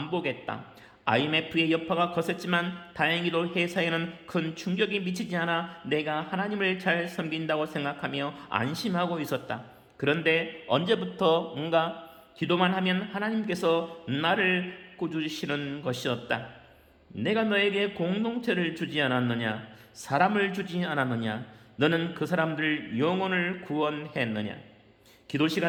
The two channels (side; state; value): both; identical; correlation 1.00